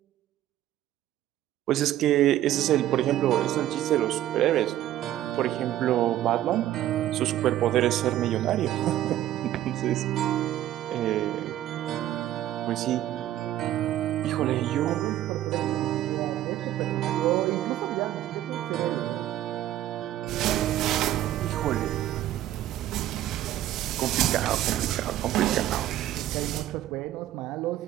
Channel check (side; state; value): left; quieter; 13.1 dB